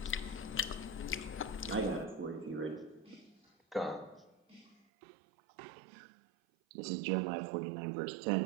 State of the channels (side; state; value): left; drops out; at 4.8 s